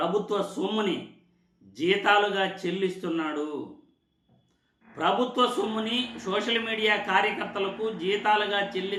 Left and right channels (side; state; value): both; identical; correlation 1.00